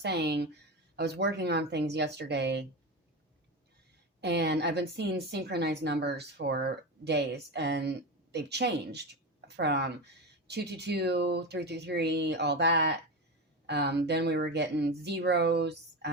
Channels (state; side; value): normal; both; correlation 0.20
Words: I was working on things yesterday, and I've been seeing synchronized numbers for days, and they've changed from 222, 333, all that. Then we were getting zeros.